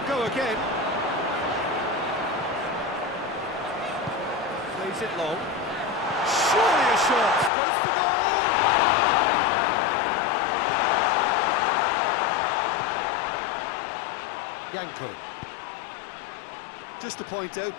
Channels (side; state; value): right; drops out; at 7.5 s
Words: go again. Plays it long. Surely a shot. Goes for goal! Janko. Just to point out,